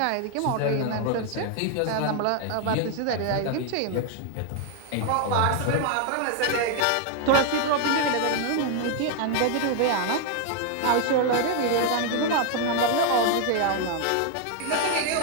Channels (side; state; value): both; different; correlation 0.00